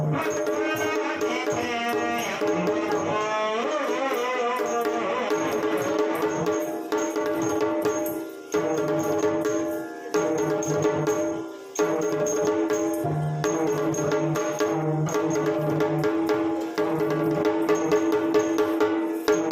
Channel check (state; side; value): identical; both; correlation 1.00